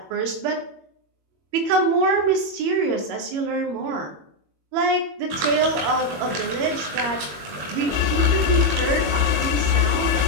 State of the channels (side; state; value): left; late; 21 ms